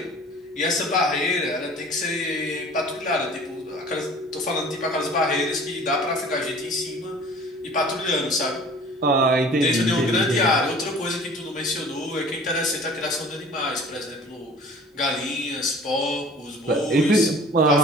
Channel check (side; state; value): both; normal; correlation 0.46